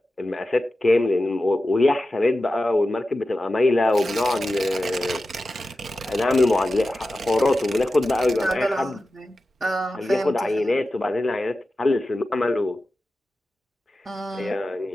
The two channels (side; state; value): both; normal; correlation 0.93